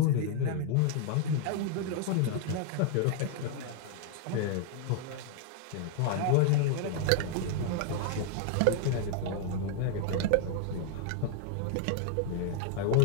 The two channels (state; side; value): different; both; correlation 0.00